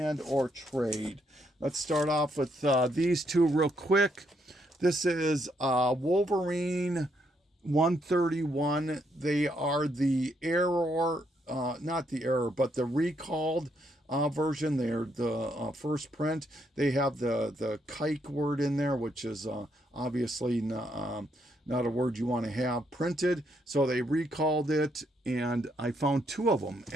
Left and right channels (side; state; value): both; normal; correlation 0.75